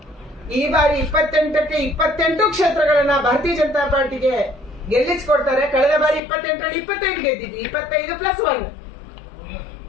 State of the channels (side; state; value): right; drops out; at 6.2 s